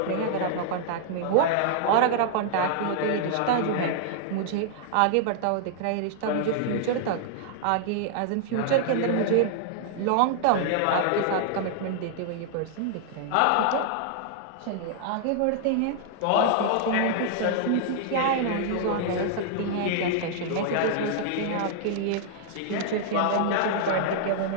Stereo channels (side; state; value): both; different; correlation -0.01